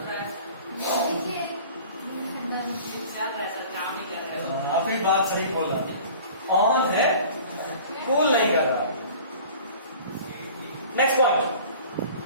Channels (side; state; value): both; inverted; correlation -0.44